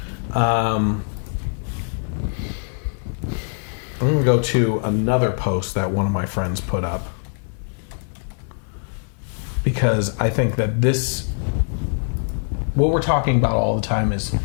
I'm going to go to another post that one of my friends put up, because I think that what we're talking about all the time is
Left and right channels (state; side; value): silent; right; 58 dB below the other